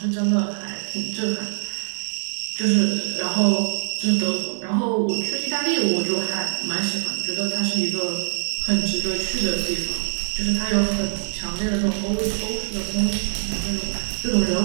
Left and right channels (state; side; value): silent; left; digital silence